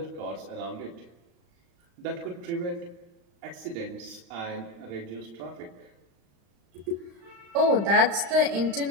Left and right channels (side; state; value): left; late; 35 ms